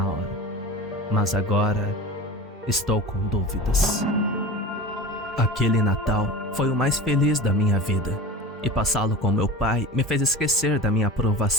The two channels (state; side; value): normal; both; correlation 0.34